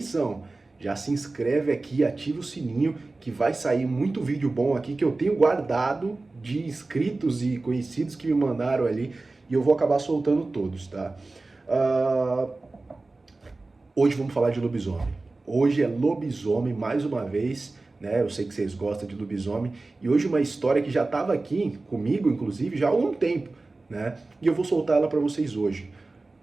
Já se inscreve aqui, ativa o sininho, que vai sair muito vídeo bom aqui que eu tenho guardado de inscritos e conhecidos que me mandaram ali e eu vou acabar soltando todos, tá? Ah, Hoje vamos falar de lobisomem. Hoje é lobisomem mais uma vez, né? Eu sei que vocês gostam de lobisomem. E hoje uma história que já estava aqui comigo, inclusive, já há algum tempo, né? E eu vou soltar ela para vocês hoje.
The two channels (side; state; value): left; quieter; 3.3 dB